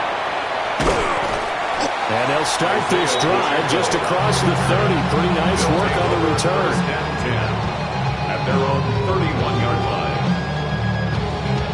And they'll start this drive just across the 30. Pretty nice work on the return. 1st and 10 at their own 31-yard line.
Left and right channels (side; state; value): both; identical; correlation 1.00